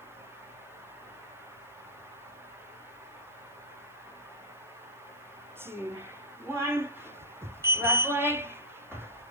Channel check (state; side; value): noise; right; hiss, 30 dB below the sound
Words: Two, one. Left leg.